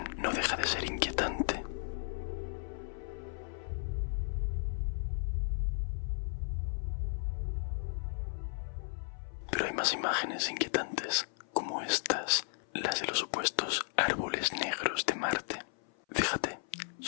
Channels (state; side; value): silent; right; 54 dB below the other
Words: no deja de ser inquietante. Pero hay más imágenes inquietantes, como estas, las de los supuestos árboles negros de Marte. Fíjate,